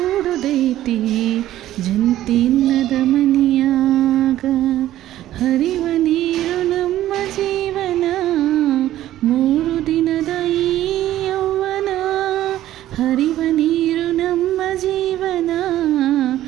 ಜಂತಿನ್ನದ ಮನಿಯಾಗ. ಹರಿವ ನೀರು ನಮ್ಮ ಜೀವನ, 3 ದಿನದ ಈ ಯೌವನ. ಹರಿವ ನೀರು ನಮ್ಮ ಜೀವನ,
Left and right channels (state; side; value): quieter; left; 13.6 dB